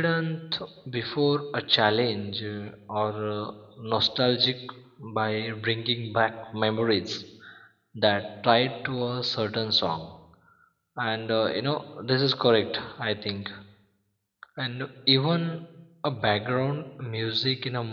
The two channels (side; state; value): both; identical; correlation 1.00